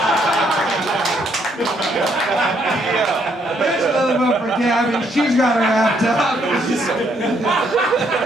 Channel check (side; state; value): both; normal; correlation 0.71